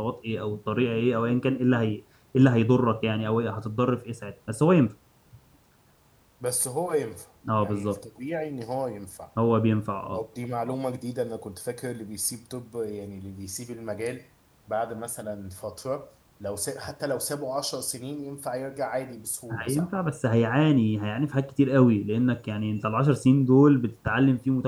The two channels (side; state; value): both; identical; correlation 1.00